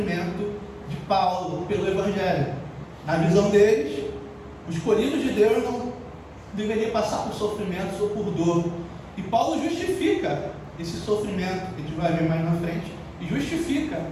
de Paulo pelo Evangelho. Na visão deles, o escolhido de Deus não deveria passar por sofrimentos ou por dor. E Paulo justifica esse sofrimento, que a gente vai ver mais na frente, e justifica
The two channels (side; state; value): both; identical; correlation 1.00